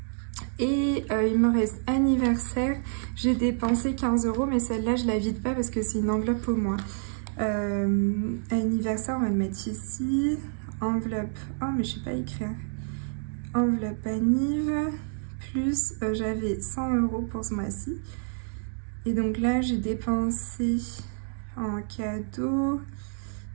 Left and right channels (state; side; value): silent; left; digital silence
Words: Et il me reste anniversaire, j'ai dépensé 15 €, mais celle-là je la vide pas parce que c'est une enveloppe au moins. Anniversaire, on va le mettre ici. Enveloppe, oh mais je sais pas écrire. Enveloppe anniv, plus j'avais 100 € pour ce mois-ci. Et donc là j'ai dépensé en cadeau,